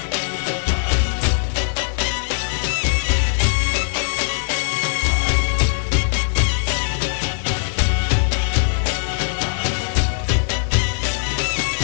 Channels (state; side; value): silent; right; digital silence